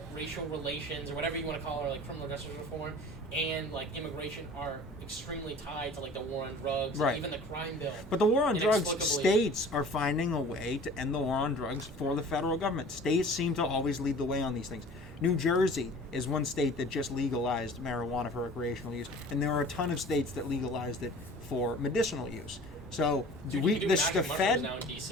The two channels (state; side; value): normal; both; correlation 0.45